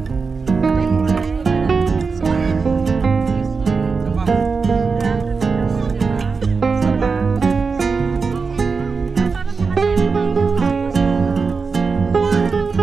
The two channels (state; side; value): quieter; left; 4.8 dB